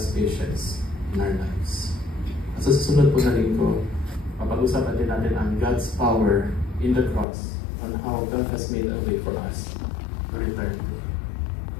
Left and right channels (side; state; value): right; drops out; at 7.2 s